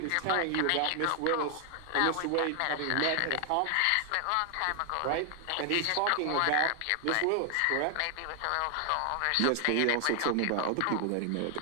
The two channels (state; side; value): different; both; correlation 0.00